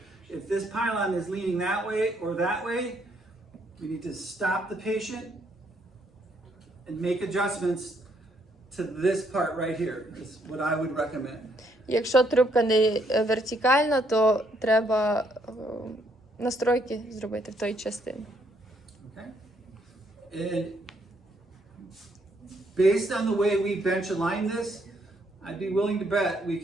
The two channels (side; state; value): both; normal; correlation 0.71